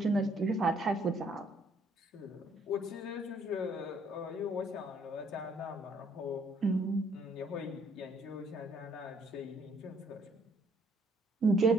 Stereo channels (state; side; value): normal; both; correlation 0.65